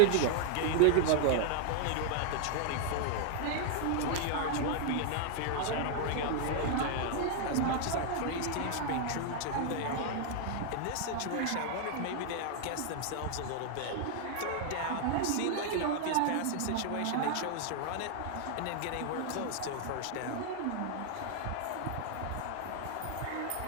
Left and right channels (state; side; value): different; both; correlation 0.00